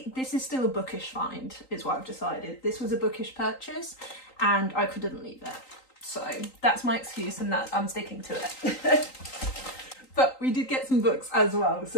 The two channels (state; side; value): late; right; 3.9 ms